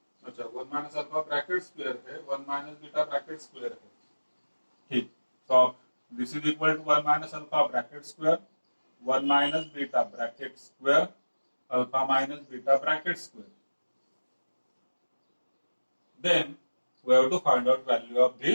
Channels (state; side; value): inverted; both; correlation -1.00